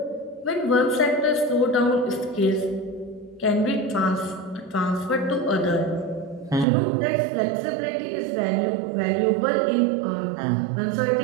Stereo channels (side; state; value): left; drops out; at 6.7 s